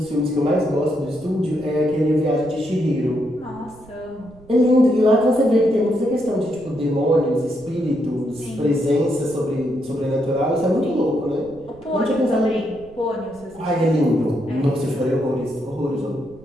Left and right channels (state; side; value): noise; right; rumble, 23 dB below the sound